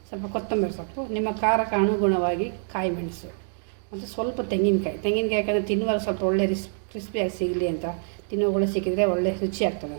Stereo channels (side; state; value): left; silent; 61 dB below the other